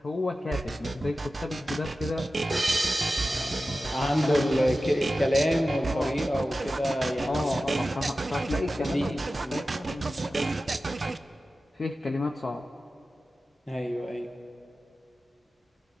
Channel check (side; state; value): both; normal; correlation 0.94